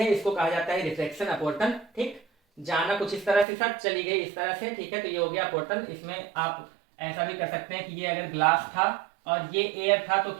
इसको कहा जाता है रिफ्लेक्शन, अपवर्तन। ठीक, जाना कुछ इस तरह से सर, चली गई इस तरह से, ठीक है, तो ये हो गया अपवर्तन। इसमें आप ऐसा भी कर सकते हैं कि ये अगर ग्लास था और ये एयर था तो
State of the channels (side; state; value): left; drops out; at 3.5 s